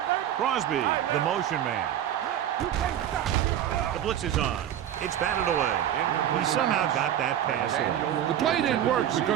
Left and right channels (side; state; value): left; quieter; 10.8 dB